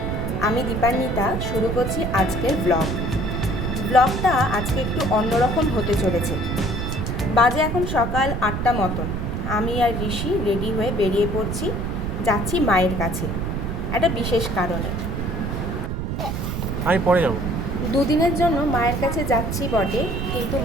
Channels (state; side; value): noise; right; rumble, 2 dB below the sound